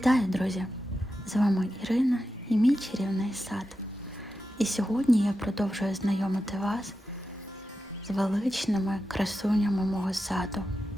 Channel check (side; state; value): both; normal; correlation 0.90